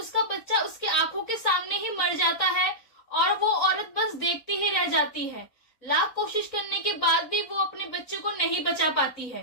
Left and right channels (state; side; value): late; right; 3.9 ms